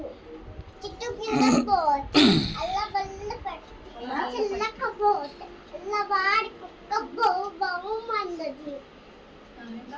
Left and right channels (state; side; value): identical; both; correlation 1.00